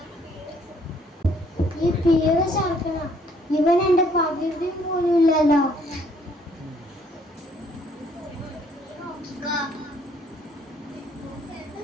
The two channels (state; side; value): normal; both; correlation 0.64